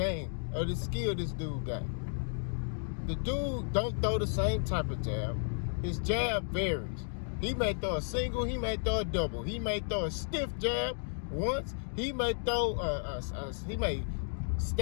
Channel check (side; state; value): right; silent; digital silence